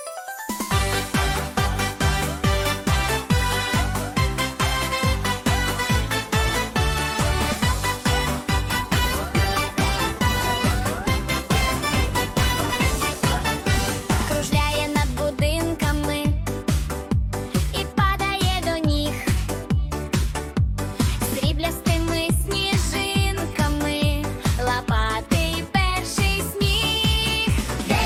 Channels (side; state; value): both; identical; correlation 1.00